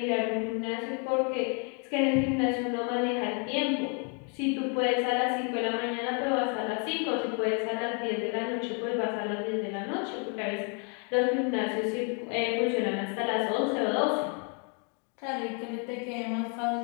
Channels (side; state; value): right; quieter; 37.2 dB